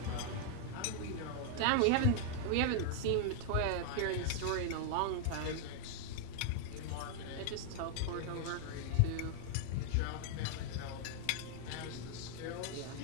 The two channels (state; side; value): different; both; correlation 0.00